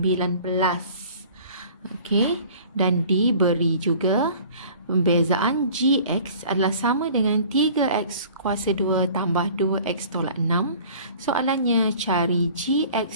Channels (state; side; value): inverted; both; correlation -0.48